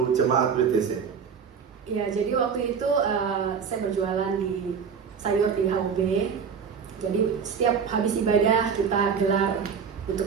jemaat WTC? Iya, jadi waktu itu saya berjualan di sayur di HOB. Jadi setiap habis ibadah kita gelar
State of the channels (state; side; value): quieter; left; 6.5 dB